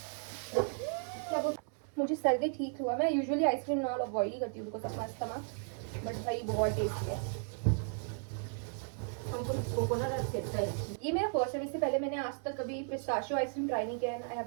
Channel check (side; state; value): left; silent; 54 dB below the other